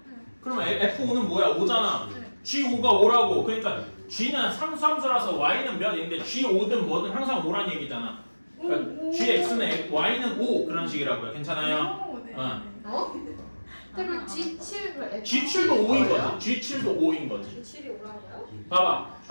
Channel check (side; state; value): both; inverted; correlation -1.00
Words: 그러면 f5는 뭐야? 5잖아. g5가 5라고. 그러니까 g는 상수함수라서 y는 몇인데 g5든 뭐든 항상 5란 얘기잖아. 그러니까 gx는 y는 5 그런 식이라고요. 괜찮아요? 그럼 G7을 G7도 5인 거지. G7도 5인 거지. G7이 오라고요? 봐봐.